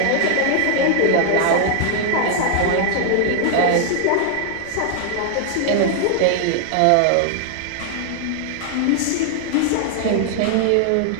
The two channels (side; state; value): both; different; correlation 0.00